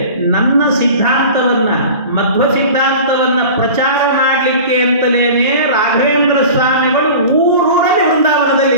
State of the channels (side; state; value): both; inverted; correlation -0.38